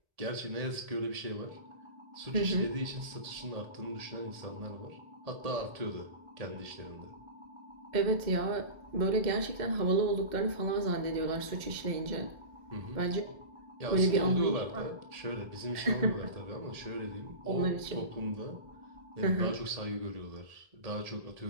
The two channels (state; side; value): late; left; 1.7 ms